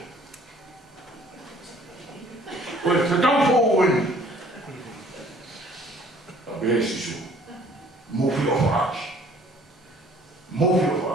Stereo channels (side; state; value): both; normal; correlation 0.56